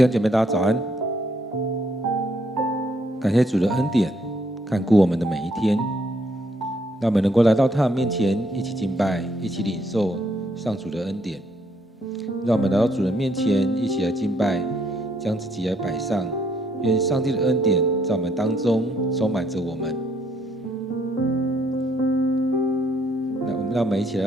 兄姐妹，大家早安！感谢主的恩典，看顾我们的每一天，让我们能够来到他的面前，一起敬拜，一起领受上主的恩典。让我们来到主的面前，一起来敬拜，将自己来摆上。愿上帝的恩典在我们当中充满着我们。让我们一起来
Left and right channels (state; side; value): normal; both; correlation 0.70